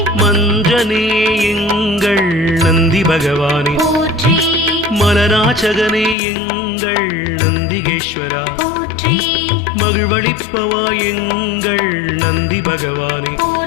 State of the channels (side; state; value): right; drops out; at 6.2 s